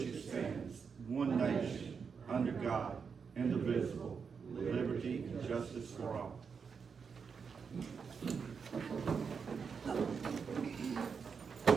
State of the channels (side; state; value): left; quieter; 5.9 dB